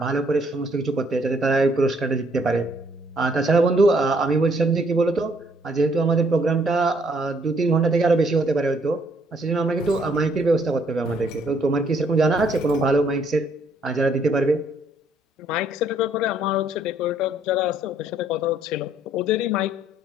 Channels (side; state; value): both; normal; correlation 0.66